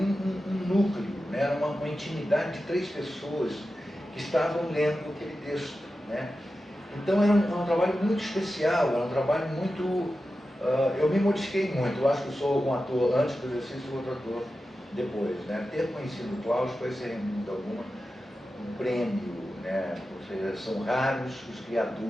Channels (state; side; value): normal; both; correlation 0.92